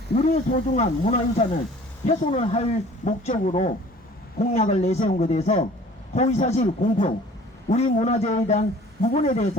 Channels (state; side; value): normal; both; correlation 0.49